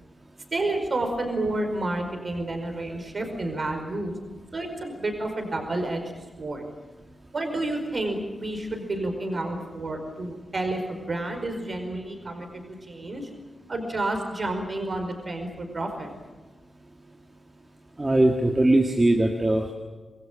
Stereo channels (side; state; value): both; normal; correlation 0.93